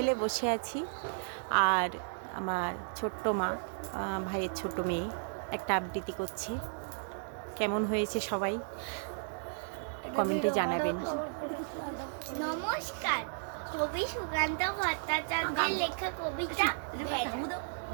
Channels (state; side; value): silent; left; digital silence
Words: বসে আছি। আর আমার ছোট্ট মা, ভাইয়ের ছোট মেয়ে একটা আবৃত্তি করছে। কেমন হয়েছে সবাই কমেন্টে জানাবেন। নমস্কার, কবি সুকান্ত ভট্টাচার্যের লেখা কবিতা